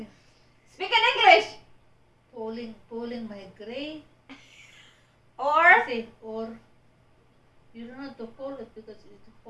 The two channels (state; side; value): identical; both; correlation 1.00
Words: Speak in English. Pulling my gray. Or Or you don't have to pull it because it will